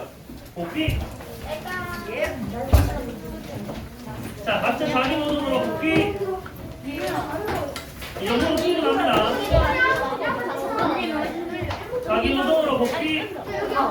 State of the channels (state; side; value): identical; both; correlation 1.00